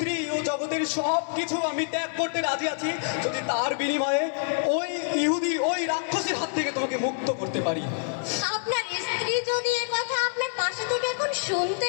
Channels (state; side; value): silent; right; 60 dB below the other